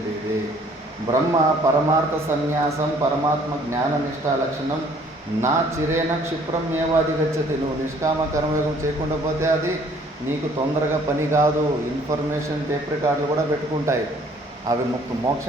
బ్రహ్మ పరమార్థ సన్యాసం పరమాత్మ జ్ఞాన నిష్ఠా లక్షణం నా చిరేన క్షిప్రం ఏవాధిగచ్చతి. నువ్వు నిష్కామ కర్మయోగం చేయకుండా పోతే అది నీకు తొందరగా పని కాదు. ఇన్ఫర్మేషన్ టేప్ రికార్డులు కూడా పెట్టుకుంటాయి, అవి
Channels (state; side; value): normal; both; correlation 0.58